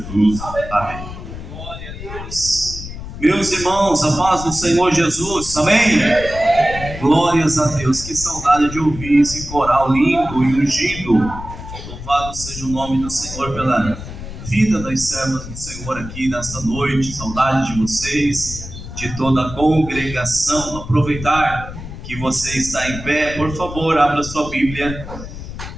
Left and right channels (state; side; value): noise; left; rumble, 11 dB below the sound